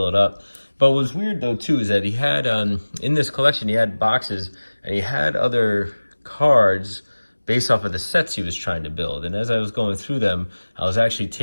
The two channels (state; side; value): inverted; both; correlation -1.00